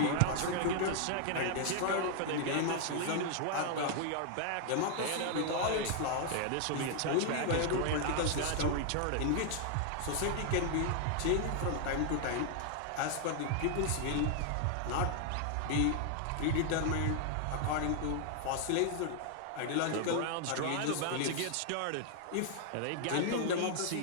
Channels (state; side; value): different; both; correlation 0.00